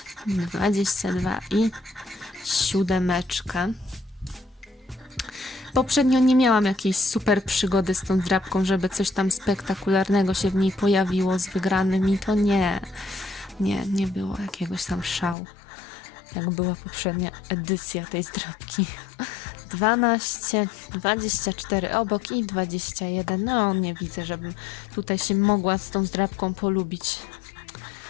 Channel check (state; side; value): drops out; right; at 15.4 s